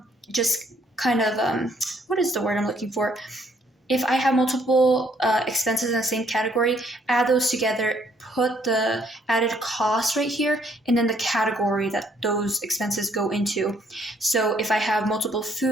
what is the word I'm looking for? If I have multiple expenses in the same category, add those together, put the added cost right here, and then the category that those expenses go into. So if I have multiple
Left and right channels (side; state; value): both; normal; correlation 0.66